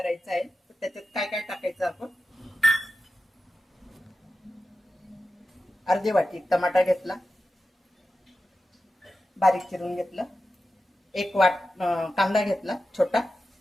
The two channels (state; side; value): normal; both; correlation 0.92